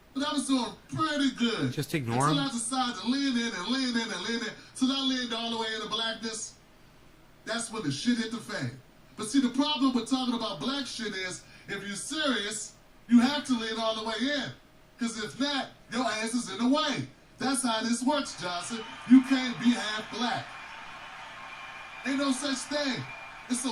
But I was doing pretty good. Just ignore until him. I decided to lean in and lean in and lean in. Till I leaned all the way into blackness. That's when the shit hit the fan. But see, the problem with talking about black shit is, if you're serious, you have to lean all the way in. Because if not, your ass is in the way. That's how this works, Johnson. You can't be half black. Ain't no such thing. It's a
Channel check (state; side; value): identical; both; correlation 1.00